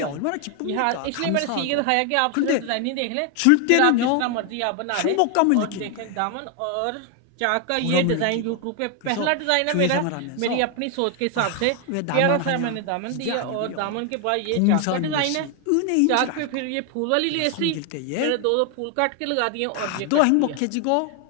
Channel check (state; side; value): different; both; correlation 0.01